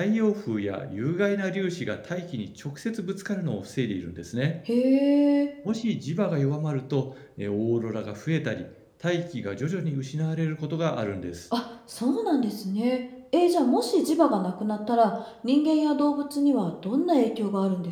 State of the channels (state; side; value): identical; both; correlation 1.00